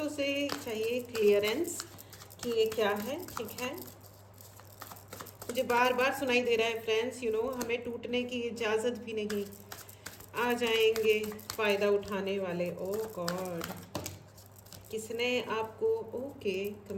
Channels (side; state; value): both; identical; correlation 1.00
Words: से चाहिए क्लियरेंस कि ये क्या है, ठीक है। मुझे बार बार सुनाई दे रहा है फ्रेंड्स, हमें टूटने की इजाज़त भी नहीं। आ जाएंगे फ़ायदा उठाने वाले। ओह गॉड, किसने आपको, ओके,